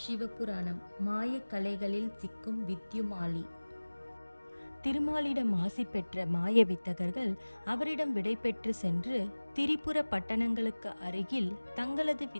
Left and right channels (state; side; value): inverted; both; correlation -1.00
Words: சிவபுராணம் மாயக்கலைகளில் சிக்கும் வித்யுமாலி. திருமாலிடம் ஆசி பெற்ற மாய வித்தகர்கள் அவரிடம் விடைபெற்று சென்று திரிபுர பட்டணங்களுக்கு அருகில் தங்களது